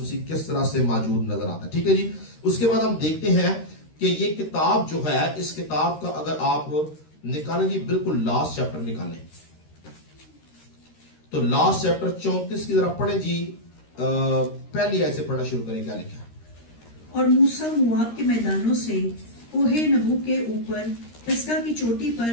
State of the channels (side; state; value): right; late; 13 ms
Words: مسیح کس طرح سے موجود نظر آتا ہے. ٹھیک ہے جی. اس کے بعد ہم دیکھتے ہیں کہ یہ کتاب جو ہے، اس کتاب کا اگر آپ نکالیں جی، بالکل لاسٹ چیپٹر نکالیں تو لاسٹ چیپٹر 34 کی ذرا پڑھیں جی. پہلی آیت سے پڑھنا شروع کریں. کیا لکھا ہے؟ اور موسیٰ مواب کے میدانوں سے کوہ نبو کے اوپر پسگا کی چوٹی